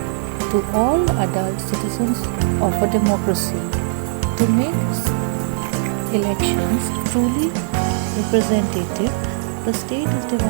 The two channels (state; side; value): silent; left; 66 dB below the other